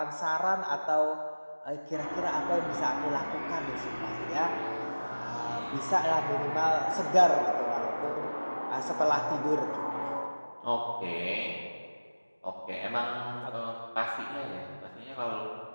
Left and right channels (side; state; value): both; inverted; correlation -1.00